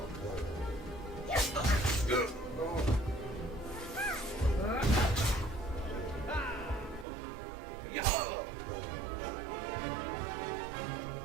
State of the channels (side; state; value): left; drops out; at 7.1 s